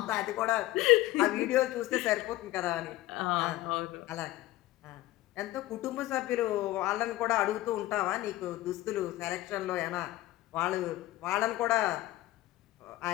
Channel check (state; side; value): quieter; right; 16.6 dB